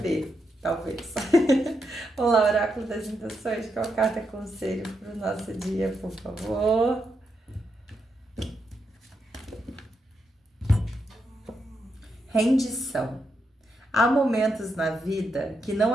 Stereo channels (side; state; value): both; normal; correlation 0.83